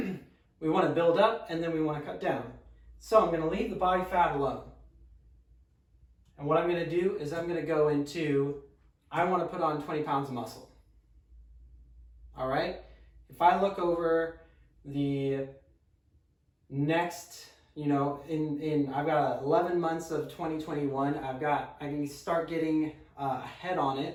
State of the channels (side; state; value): both; identical; correlation 1.00